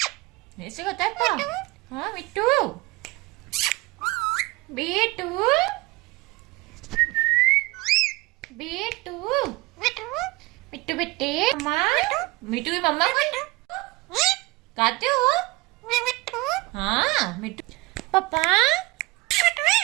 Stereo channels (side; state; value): left; quieter; 22.6 dB